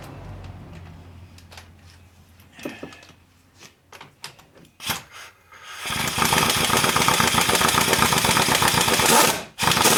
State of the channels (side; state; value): both; identical; correlation 1.00